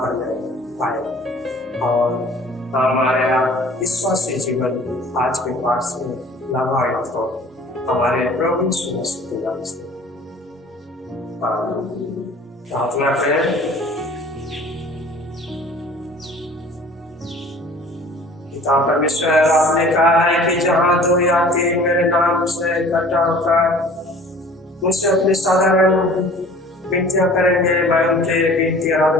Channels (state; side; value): normal; both; correlation 0.48